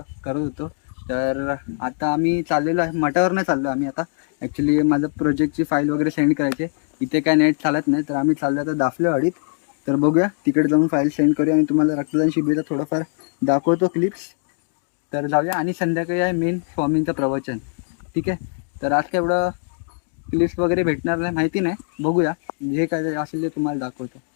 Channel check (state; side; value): silent; right; 64 dB below the other